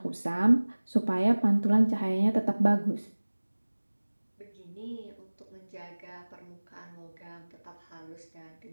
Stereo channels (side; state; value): both; inverted; correlation -1.00